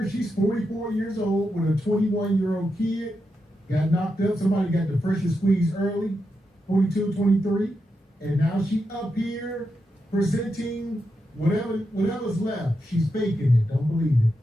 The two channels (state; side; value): normal; both; correlation 0.86